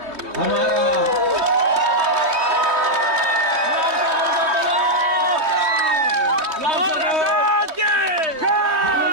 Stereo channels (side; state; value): left; late; 3.2 ms